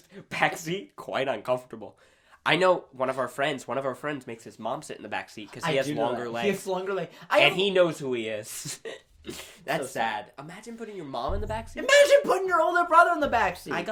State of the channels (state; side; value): identical; both; correlation 1.00